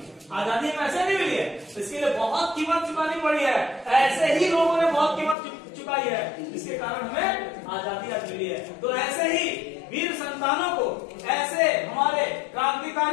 आजादी हमें ऐसे नहीं मिली है, इसके लिए बहुत कीमत चुकानी पड़ी है, ऐसे ही लोगों ने बहुत कीमत चुकाई है, इसके कारण हमें आजादी आज मिली है। तो ऐसे ही वीर संतानों को, ऐसे हमारे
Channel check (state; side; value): drops out; right; at 5.4 s